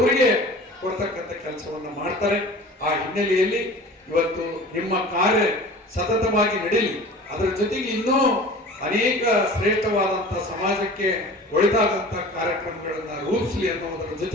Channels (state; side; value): normal; both; correlation 0.41